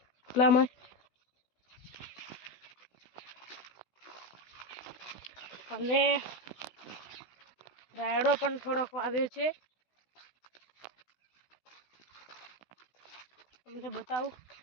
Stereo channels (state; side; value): late; right; 16 ms